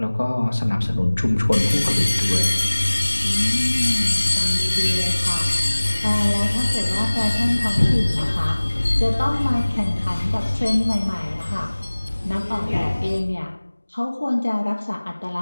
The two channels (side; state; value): both; inverted; correlation -1.00